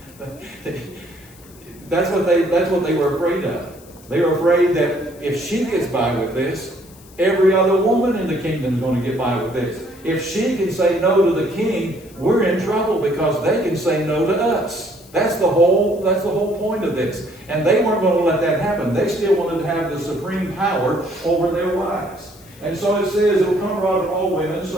That's what they were afraid of. They were afraid that if she gets by with this, every other woman in the kingdom is going to get by with this. If she can say no to the king, we're in trouble because they can say no to us. That's the whole point of this. And they weren't going to let that happen. They still wanted to have the supreme power over their wives. And so it says, it will come abroad to all women,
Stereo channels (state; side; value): noise; left; hiss, 24 dB below the sound